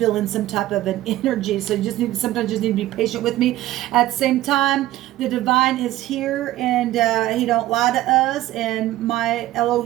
some type of an energy. So you sometimes just need to be patient with me. At the same time, the divine is here, and he don't lie to us. And my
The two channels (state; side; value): quieter; left; 15.2 dB